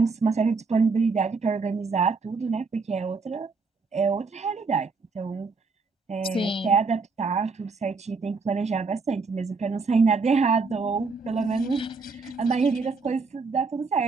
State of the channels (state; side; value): quieter; left; 4.4 dB